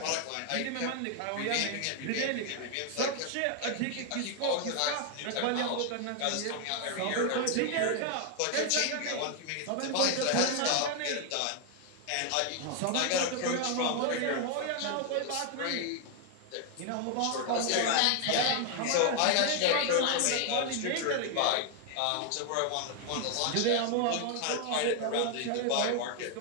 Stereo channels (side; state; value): both; different; correlation 0.00